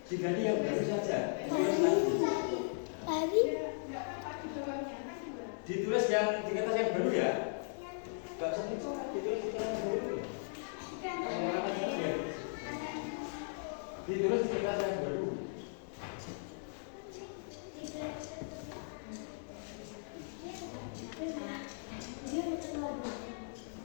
Diganti yang baru saja. Ditulis yang di kertas yang baru ya. Gak usah ditulis di kertas yang baru. Ditulis di kertas yang baru.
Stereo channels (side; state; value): right; silent; digital silence